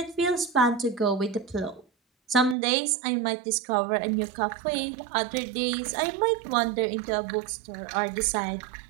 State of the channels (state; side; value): drops out; left; at 2.6 s